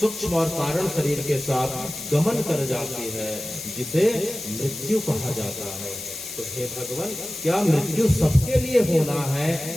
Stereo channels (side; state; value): left; noise; hiss, 9 dB below the sound